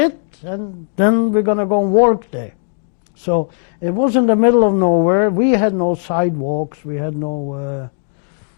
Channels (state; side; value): silent; right; digital silence